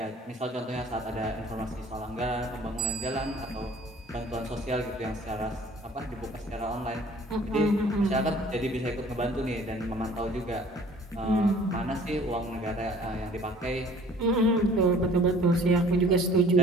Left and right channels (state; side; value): normal; both; correlation 0.52